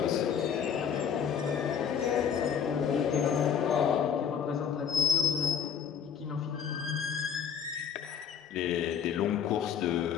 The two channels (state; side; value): quieter; right; 7.8 dB